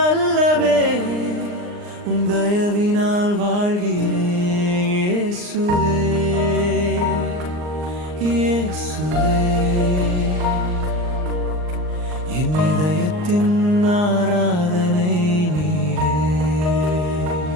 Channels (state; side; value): late; left; 39 ms